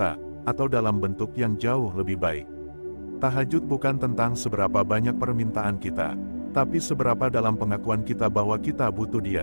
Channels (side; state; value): both; inverted; correlation -1.00